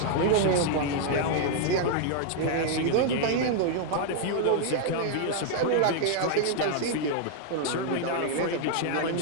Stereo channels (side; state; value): both; different; correlation 0.00